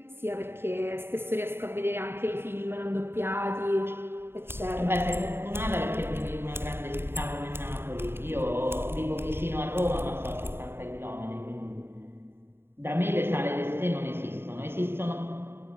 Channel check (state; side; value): late; left; 0.11 ms